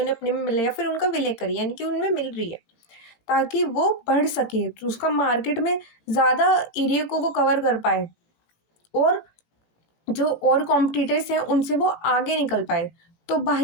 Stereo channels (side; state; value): right; late; 18 ms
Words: अपने में मिल रहा है या फिर उनका विलय कर रही है, यानी कि उनमें मिल रही है, ताकि वो बढ़ सके, तो उसका मार्केट में ज़्यादा एरिया को वो कवर कर पाए और जो और कॉम्पिटिटर्स हैं उनसे वो आगे निकल पाए। तो